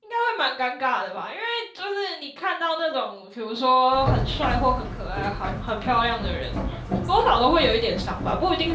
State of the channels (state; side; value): identical; both; correlation 1.00